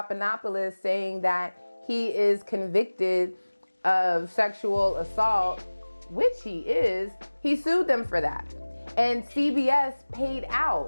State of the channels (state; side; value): inverted; both; correlation -1.00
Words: saying that he is convicted of sexual assault, which he is, he sued them for that. And CBS paid